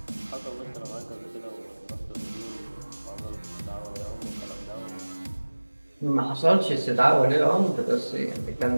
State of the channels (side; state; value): both; inverted; correlation -1.00